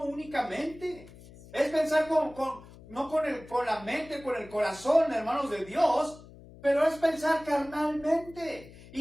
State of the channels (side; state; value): left; noise; hum, 20 dB below the sound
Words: únicamente. Es pensar no con la mente, con el corazón, hermanos, de Dios, pero es pensar carnalmente.